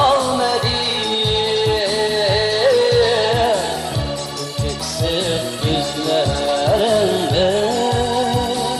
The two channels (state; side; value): identical; both; correlation 1.00